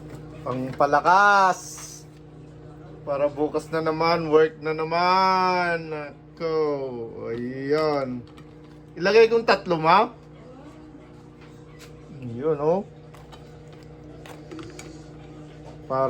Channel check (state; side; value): identical; both; correlation 1.00